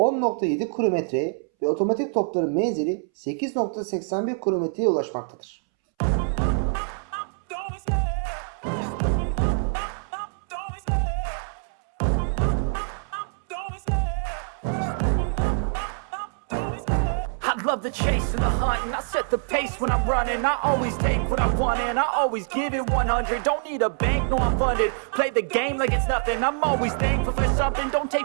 kilometreye ve otomatik topların menzili 8.81 kilometreye ulaşmaktadır. Love the chase and the hunt, and I set the pace when I'm running. I always take what I want and I always give it 100. Don't need a bank, no I'm funded. Play the game like it's nothing. I'm always thankful for something. Don't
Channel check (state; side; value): silent; left; 62 dB below the other